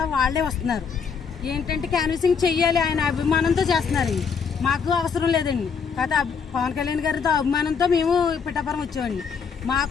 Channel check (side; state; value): right; quieter; 6.1 dB